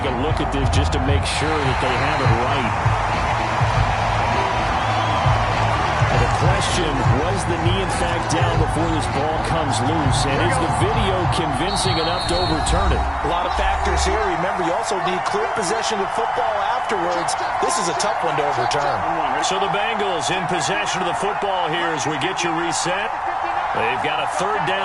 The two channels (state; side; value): identical; both; correlation 1.00